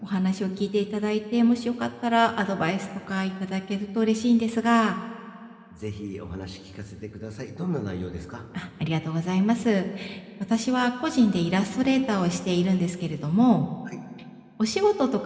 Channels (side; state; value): both; identical; correlation 1.00